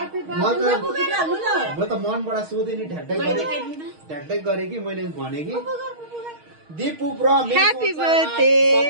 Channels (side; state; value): left; late; 6.4 ms